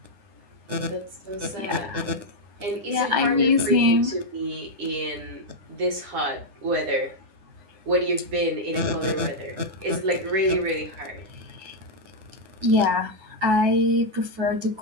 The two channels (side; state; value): left; late; 9.9 ms